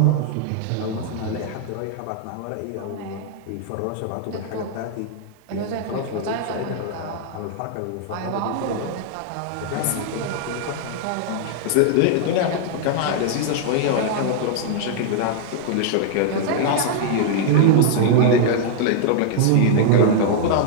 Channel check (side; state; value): both; different; correlation -0.01